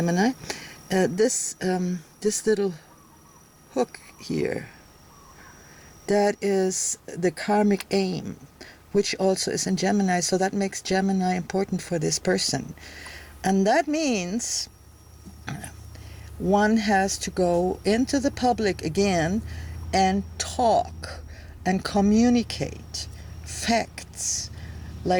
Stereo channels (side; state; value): both; identical; correlation 1.00